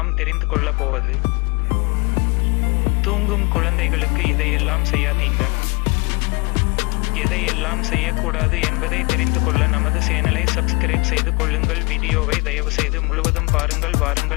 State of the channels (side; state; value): right; quieter; 28.3 dB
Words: தெரிந்து கொள்ளப் போவது, தூங்கும் குழந்தைகளுக்கு இதையெல்லாம் செய்யாதீங்க. எதையெல்லாம் செய்யக்கூடாது என்பதை தெரிந்து கொள்ள நமது சேனலை சப்ஸ்கிரைப் செய்து கொள்ளுங்கள். வீடியோவை தயவு செய்து முழுவதும் பாருங்கள்.